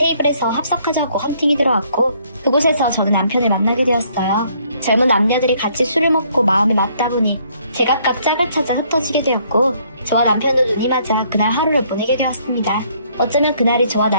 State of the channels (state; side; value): inverted; both; correlation -0.66